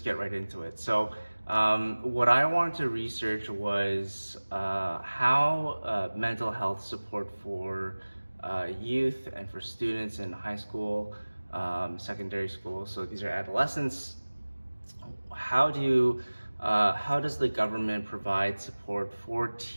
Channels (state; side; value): inverted; both; correlation -1.00